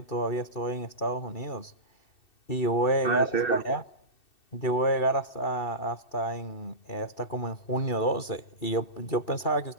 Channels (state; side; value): late; right; 2.6 ms